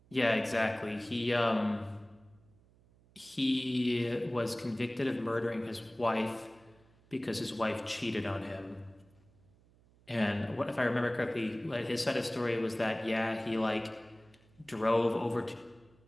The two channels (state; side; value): noise; right; hum, 29 dB below the sound